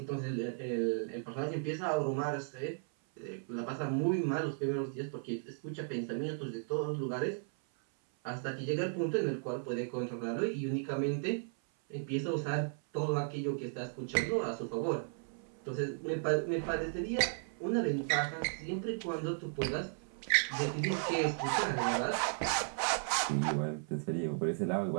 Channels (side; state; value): left; silent; 54 dB below the other